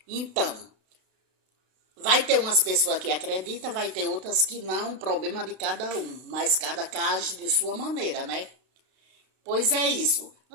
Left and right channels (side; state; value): left; late; 32 ms